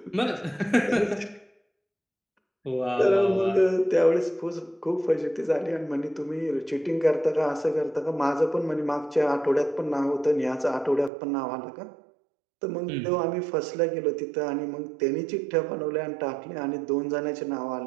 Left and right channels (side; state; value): left; drops out; at 11.1 s